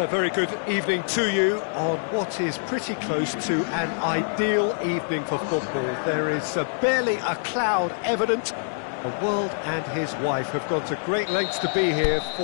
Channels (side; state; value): right; silent; digital silence